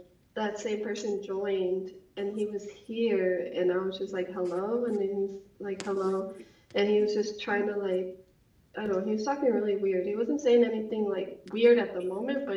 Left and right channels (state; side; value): identical; both; correlation 1.00